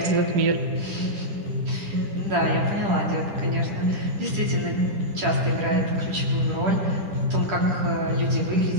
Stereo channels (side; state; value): left; late; 10 ms